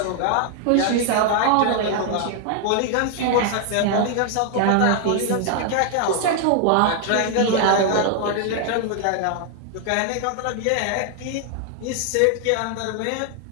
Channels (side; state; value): both; different; correlation 0.00